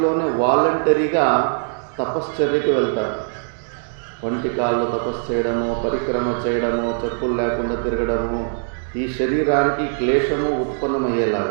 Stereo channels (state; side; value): silent; left; digital silence